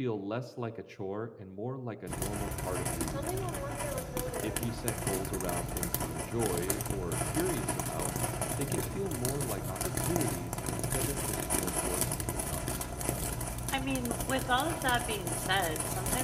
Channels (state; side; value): identical; both; correlation 1.00